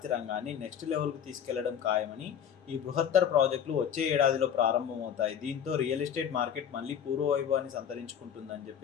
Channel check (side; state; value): right; quieter; 8.5 dB